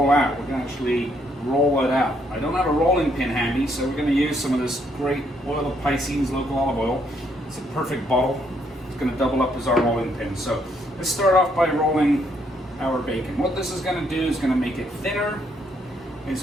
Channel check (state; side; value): normal; both; correlation 0.72